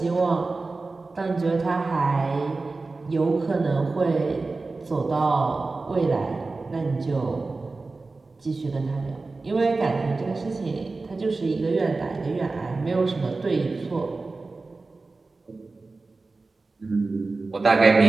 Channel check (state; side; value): quieter; left; 3.7 dB